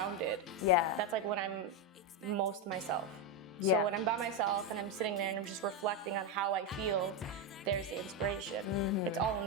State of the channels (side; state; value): both; normal; correlation 0.07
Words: Yeah. That's like when I'm most myself. Yeah. So when I'm by myself and I'm sitting there and I'm just reflecting on how I feel, there's the inspiration. It's all